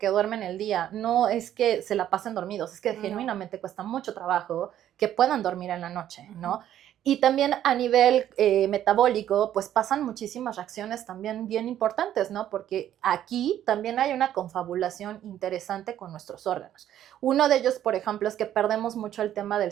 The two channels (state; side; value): quieter; left; 11.4 dB